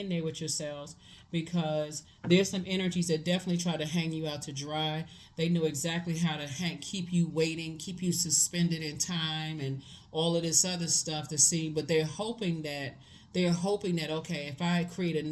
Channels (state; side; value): identical; both; correlation 1.00